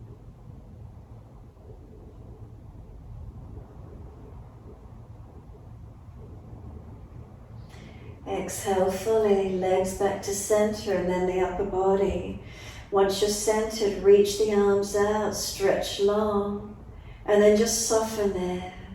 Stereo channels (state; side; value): identical; both; correlation 1.00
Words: Exhale fully, legs back to center and then the upper body. Once you're centered, reach the arms out, stretch long, and then just soften there.